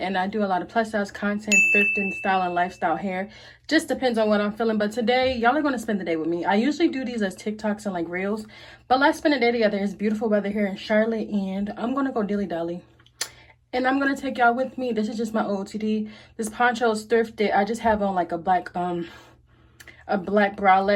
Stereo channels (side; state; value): both; identical; correlation 1.00